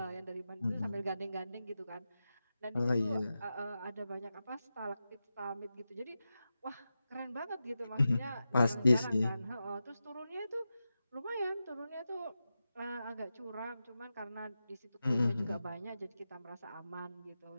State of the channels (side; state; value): both; inverted; correlation -0.91